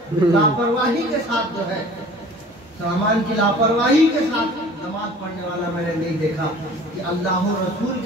लापरवाही के साथ जो है सामान की लापरवाही के साथ नमाज पढ़ने वाला मैंने नहीं देखा कि अल्लाह और रसूल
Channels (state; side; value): normal; both; correlation 0.46